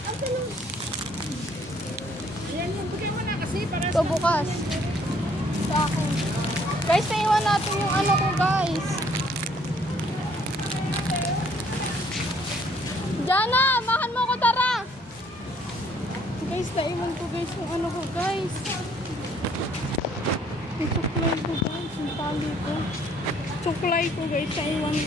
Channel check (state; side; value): normal; both; correlation 0.62